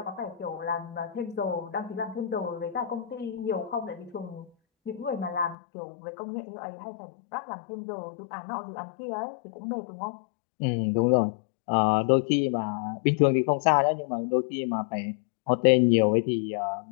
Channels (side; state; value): right; drops out; at 5.6 s